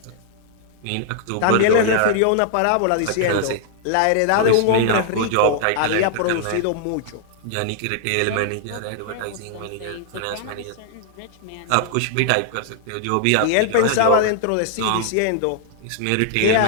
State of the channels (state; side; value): different; both; correlation -0.01